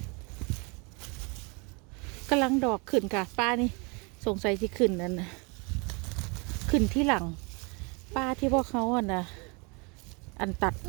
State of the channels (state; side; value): quieter; left; 31.1 dB